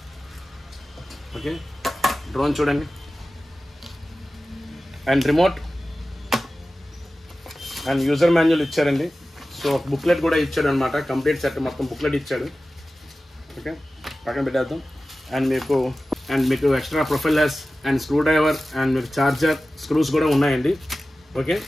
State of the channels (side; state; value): both; normal; correlation 0.95